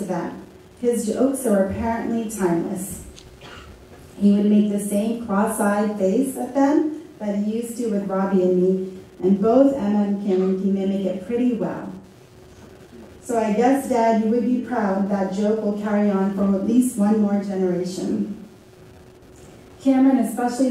them. His jokes are apparently timeless. He would make the same cross-eyed face at them that he used to with Robbie and me, and both Emma and Cameron can mimic it pretty well. So I guess, Dad, you would be proud that joke will carry on for at least one more generation. Cameron especially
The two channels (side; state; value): both; identical; correlation 1.00